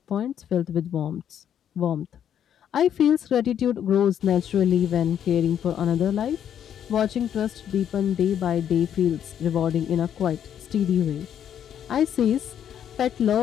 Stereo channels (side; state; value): right; quieter; 9.4 dB